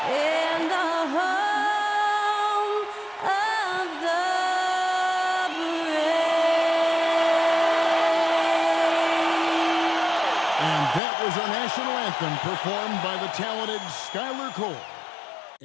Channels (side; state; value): right; drops out; at 11.0 s